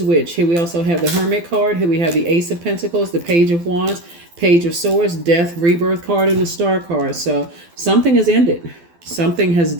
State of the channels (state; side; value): late; left; 12 ms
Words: which. Here we also have the Hermit card. Here we have the Ace of Pentacles, the Page of Wands, Page of Swords, Death, Rebirth card, and the Star card. So something has ended. Something has